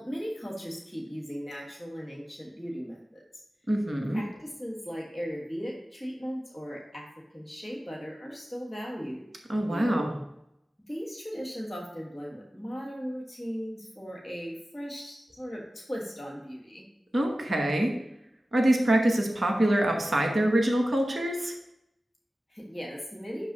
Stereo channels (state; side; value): normal; both; correlation 0.95